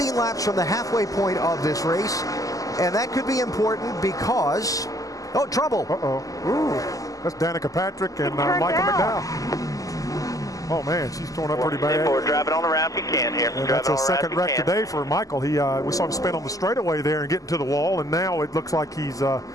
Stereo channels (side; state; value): right; late; 0.17 ms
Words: laps from the halfway point of this race, and that could be important because trouble. Ooh, that's Danica Patrick and Michael McDowell. Oh man, she's torn up pretty bad. We're driving on the ramp you can here. And that's a second wreck today for Michael. We saw him spin on the straightaway there and get into the wall, and now it looks like he's had